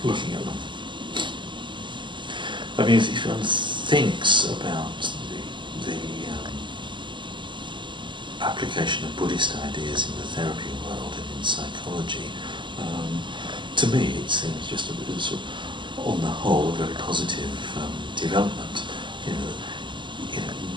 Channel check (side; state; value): left; late; 0.23 ms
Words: Looking at them. I mean, if one thinks about the application of Buddhist ideas in the therapy world and in psychology, to me it seems just sort of, on the whole, a very positive development.